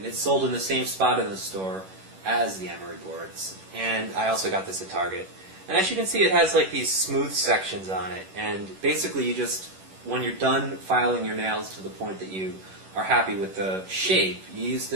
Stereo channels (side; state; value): left; late; 11 ms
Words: it's sold in the same spot in the store as the emery boards. And I also got this at Target. And as you can see, it has like these smooth sections on it. And basically, when you're done filing your nails to the point that you are happy with the shape, you use